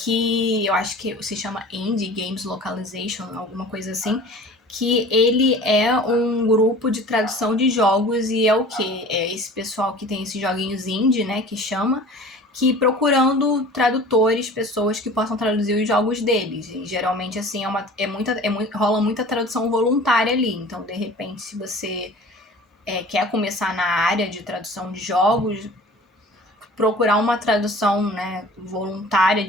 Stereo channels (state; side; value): normal; both; correlation 0.43